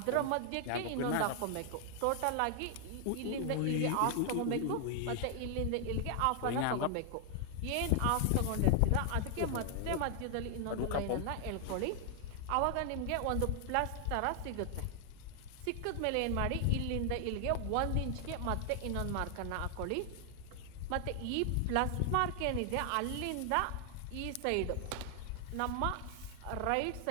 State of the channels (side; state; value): both; different; correlation 0.00